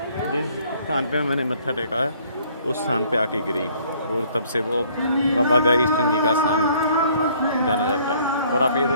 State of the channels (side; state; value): both; inverted; correlation -0.60